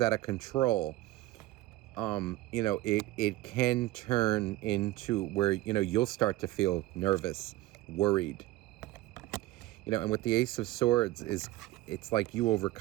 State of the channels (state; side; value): quieter; left; 17.3 dB